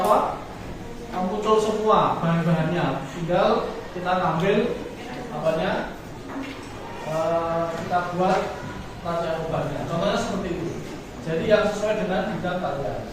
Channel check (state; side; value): identical; both; correlation 1.00